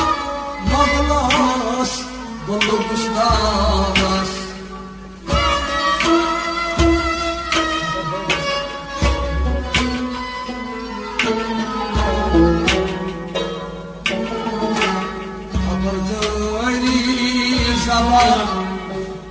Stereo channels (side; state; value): both; identical; correlation 1.00